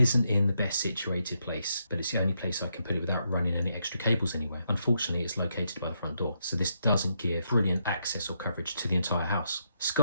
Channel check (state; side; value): inverted; both; correlation -0.78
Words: in the best situated place, but it's the only place I can put it without running any extra cables anywhere. Unfortunately, it's located by the front door, so this doesn't give brilliant access or coverage to the entire house.